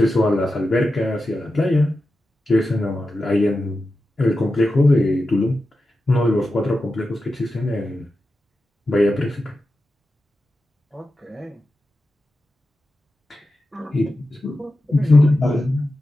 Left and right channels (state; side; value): normal; both; correlation 0.91